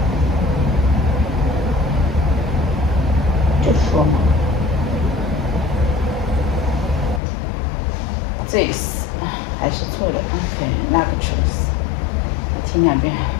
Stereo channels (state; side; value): drops out; right; at 7.2 s